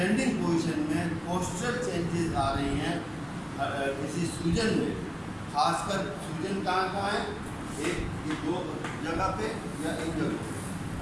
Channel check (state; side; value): identical; both; correlation 1.00